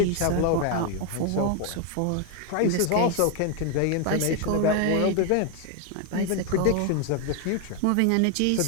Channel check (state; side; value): different; both; correlation 0.01